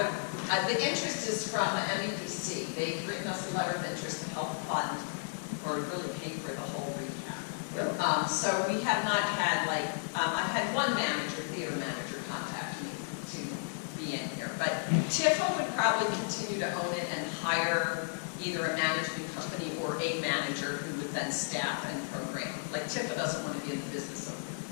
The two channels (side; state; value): right; silent; digital silence